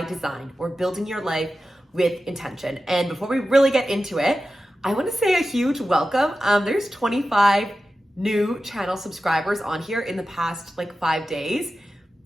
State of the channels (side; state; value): both; normal; correlation 0.93